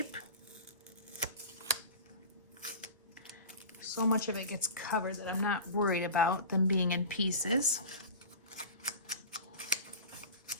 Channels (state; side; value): inverted; both; correlation -0.33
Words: So much of it gets covered that I'm not worried about them being in pieces.